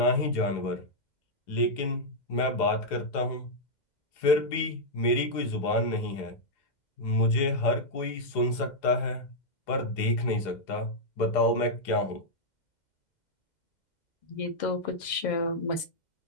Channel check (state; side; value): late; right; 2.1 ms